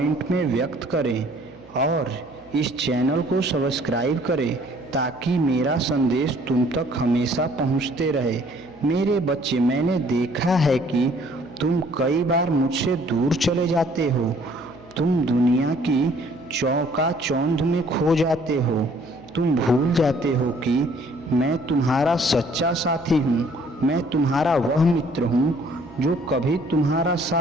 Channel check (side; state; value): right; noise; hum, 26 dB below the sound